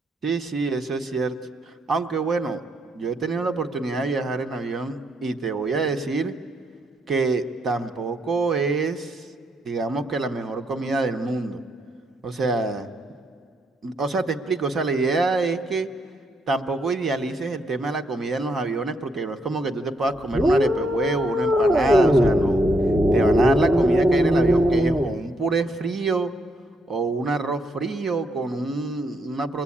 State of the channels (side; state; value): both; normal; correlation 0.75